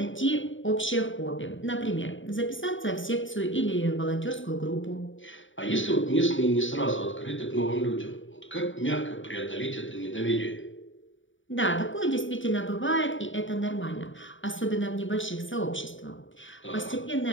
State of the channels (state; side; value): late; right; 0.56 ms